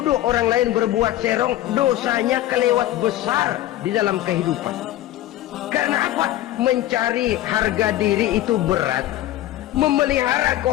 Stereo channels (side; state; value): right; quieter; 14.2 dB